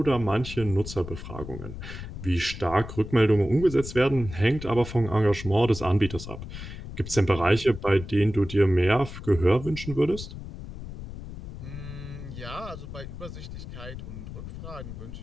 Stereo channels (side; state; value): left; noise; rumble, 10 dB below the sound